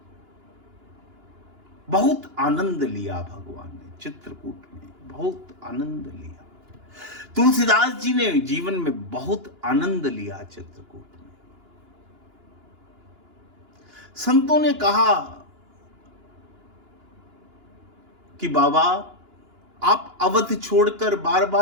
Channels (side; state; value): left; late; 2.9 ms